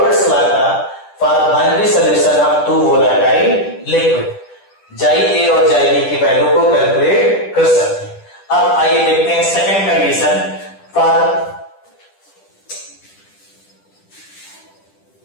लॉ का for binary solution of two volatile liquid, xi A और जाई बी की वैल्यू को कैलकुलेट कर सकते हैं। अब आइए देखते हैं second condition for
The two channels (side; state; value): right; late; 10 ms